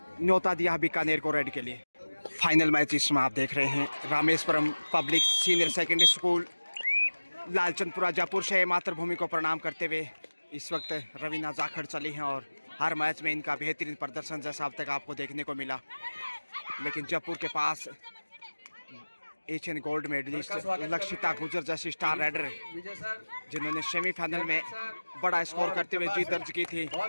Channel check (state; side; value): inverted; both; correlation -1.00